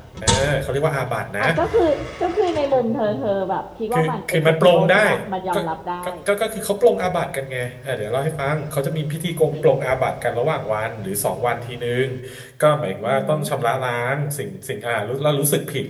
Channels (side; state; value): both; identical; correlation 1.00